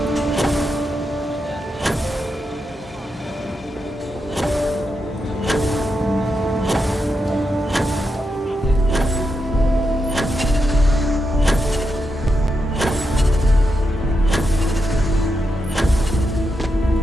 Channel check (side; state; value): both; normal; correlation 0.85